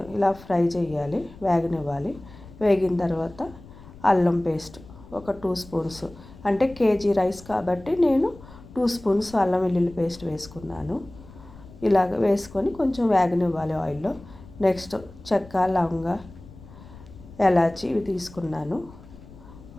ఇలా ఫ్రై చేయాలి, వేగనివ్వాలి. వేగిన తర్వాత అల్లం పేస్ట్ ఒక 2 స్పూన్స్, అంటే కేజీ రైస్ కాబట్టి నేను 2 స్పూన్స్ అల్లం వెల్లుల్లి పేస్ట్ వేసుకున్నాను. ఇలాగ వేసుకొని కొంచెం వేగనివ్వాలి ఆయిల్లో. నెక్స్ట్ చెక్క, లవంగ, ఎలాచి ఇవి తీసుకున్నాను.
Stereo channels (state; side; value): noise; left; rumble, 19 dB below the sound